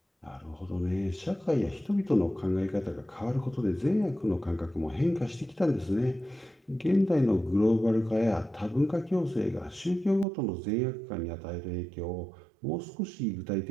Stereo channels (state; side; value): drops out; left; at 10.2 s